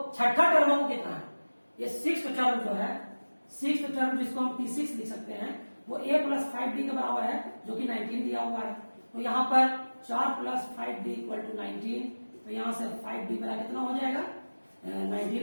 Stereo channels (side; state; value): both; inverted; correlation -1.00